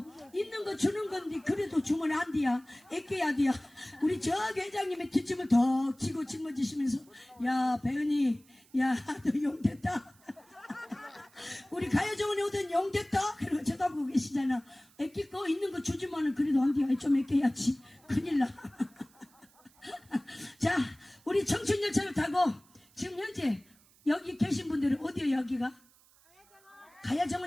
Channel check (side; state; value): right; noise; hiss, 29 dB below the sound